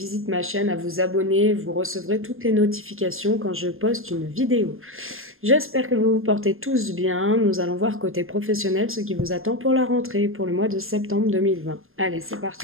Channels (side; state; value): left; late; 0.60 ms